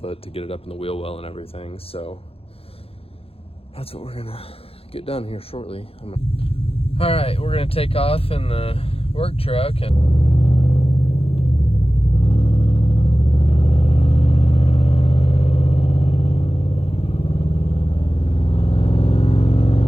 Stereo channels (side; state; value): right; late; 0.28 ms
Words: to get it up in the wheel well and everything, so that's what we're gonna get done here shortly. All right, we're gonna take off in the work truck and